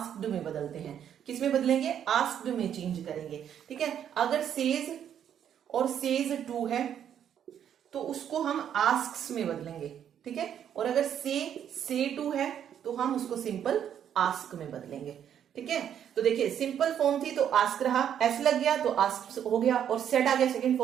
में बदलते हैं। किस में बदलेंगे, आस्क्ड में चेंज करेंगे। ठीक है, अगर सेज और सेज टू है तो उसको हम आस्क्स में बदलेंगे। ठीक है, और अगर से टू है तो हम उसको सिंपल आस्क में बदलेंगे। ठीक है। तो देखिए सिंपल फॉर्म थी तो आस्क रहा, एस लग गया तो आस्क हो गया, और सेड आ गया, सेकंड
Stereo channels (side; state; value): left; quieter; 9.4 dB